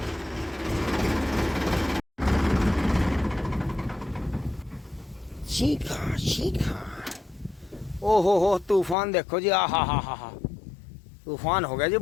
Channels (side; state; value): right; drops out; at 9.0 s